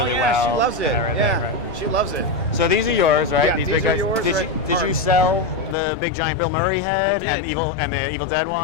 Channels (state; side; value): drops out; right; at 5.8 s